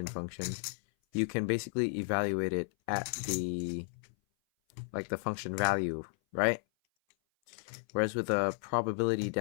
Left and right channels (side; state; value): right; silent; 55 dB below the other